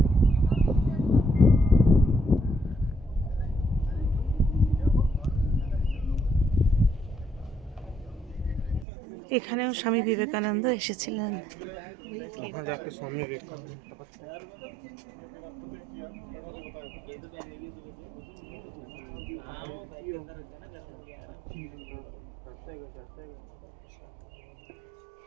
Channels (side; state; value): left; drops out; at 8.8 s